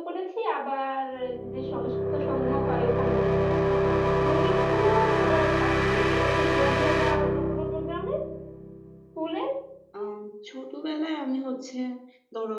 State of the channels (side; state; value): both; identical; correlation 1.00